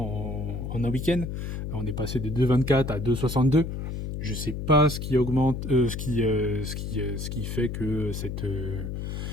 en un week-end. On est passé de 2,24 à 2,62. Je sais pas ce qui augmente, ce qui fait que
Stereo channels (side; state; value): left; noise; hum, 5 dB below the sound